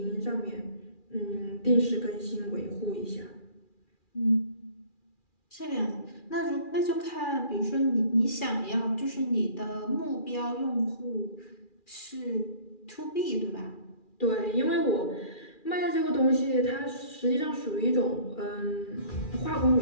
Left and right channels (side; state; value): right; late; 2.4 ms